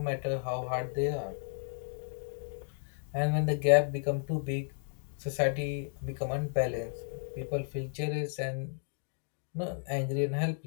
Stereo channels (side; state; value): right; silent; digital silence